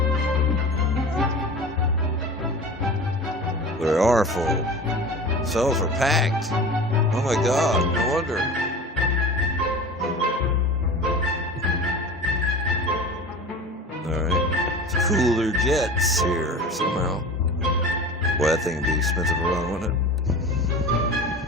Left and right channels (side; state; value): both; normal; correlation 0.35